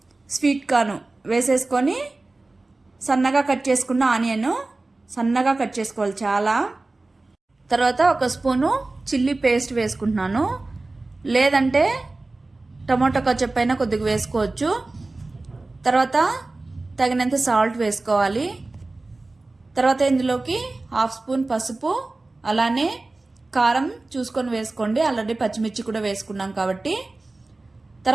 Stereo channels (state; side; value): quieter; left; 3.2 dB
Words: స్వీట్ కార్న్ వేసేసుకొని సన్నగా కట్ చేసుకున్న ఆనియన్ సన్నగా కట్ చేసుకోవాలి చాలా. తర్వాత ఒక స్పూను చిల్లీ పేస్ట్ వేసుకుంటున్నాను, లేదంటే టమాటో కచప్ అయినా కొద్దిగా వేసుకోవచ్చు. తర్వాత తగినంత సాల్ట్ వేసుకోవాలి. తర్వాత ఇందులోకి హాఫ్ స్పూన్ పసుపు, అలానే కారం చూసుకొని వేసుకోండి, ఆల్రెడీ పచ్చిమిర్చి కూడా వేసుకున్నాం కాబట్టి.